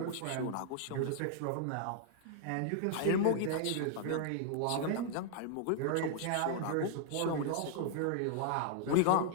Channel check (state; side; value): different; both; correlation 0.00